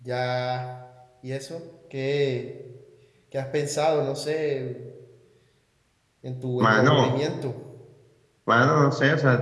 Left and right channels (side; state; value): both; identical; correlation 1.00